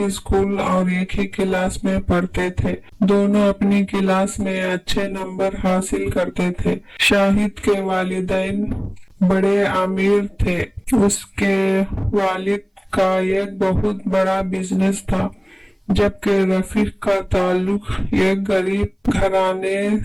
स्कूल और एक ही क्लास में पढ़ते थे। दोनों अपनी क्लास में अच्छे नंबर हासिल करते थे। शाहिद के वालिदैन बड़े अमीर थे। उसके वालिद का एक बहुत बड़ा बिजनेस था, जबकि रफीक का ताल्लुक एक गरीब घराने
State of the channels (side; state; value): both; identical; correlation 1.00